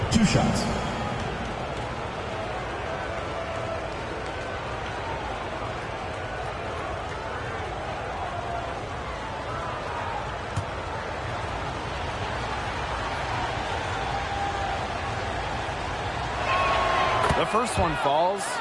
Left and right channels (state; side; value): identical; both; correlation 1.00